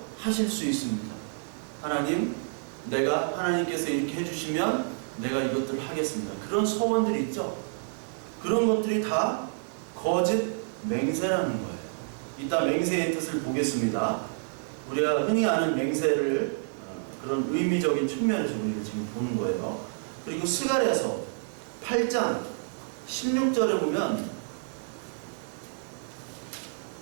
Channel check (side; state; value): left; silent; digital silence